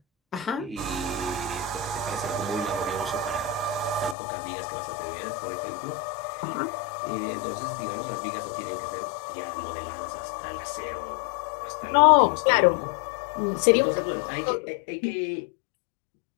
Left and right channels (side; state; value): right; drops out; at 4.2 s